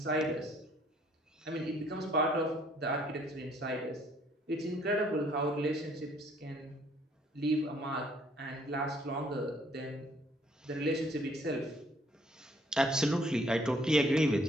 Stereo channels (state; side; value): normal; both; correlation 0.63